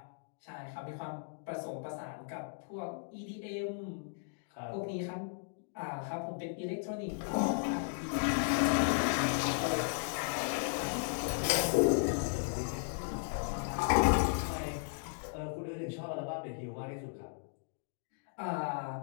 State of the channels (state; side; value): silent; right; digital silence